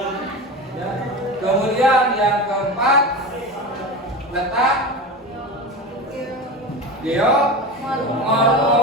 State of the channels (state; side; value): normal; both; correlation 0.26